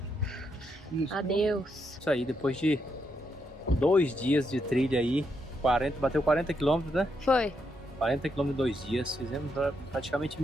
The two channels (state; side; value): normal; both; correlation 0.80